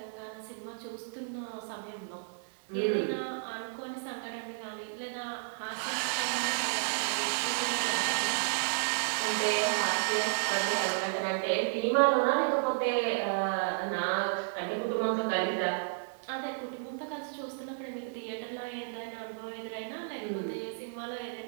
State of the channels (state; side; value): silent; left; 56 dB below the other